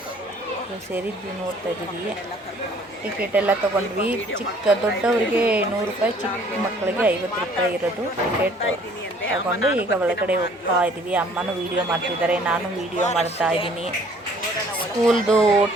ಸೇರಿದ್ವಿ. ನೋಡ್ತಾ ಇದ್ದೀವಿ. ಟಿಕೆಟ್ ಎಲ್ಲ ತೊಗೊಂಡ್ವಿ. ದೊಡ್ಡವರಿಗೆ 100 ರೂಪಾಯಿ, ಚಿಕ್ಕ ಮಕ್ಕಳಿಗೆ 50 ರೂಪಾಯಿ ಇರೋದು ಟಿಕೆಟ್ ತಗೊಂಡು ಈಗ ಒಳಗಡೆ ಹೋಗ್ತಾ ಇದ್ದೀವಿ. ಅಮ್ಮನೂ ವೀಡಿಯೋ ಮಾಡ್ತಿದ್ದಾರೆ, ನಾನು ವೀಡಿಯೋ ಮಾಡ್ತಾ ಇದ್ದೀನಿ. ಸ್ಕೂಲ್ದು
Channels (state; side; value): normal; both; correlation 0.57